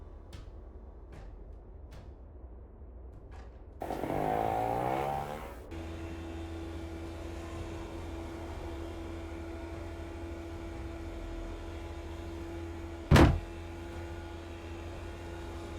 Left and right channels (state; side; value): identical; both; correlation 1.00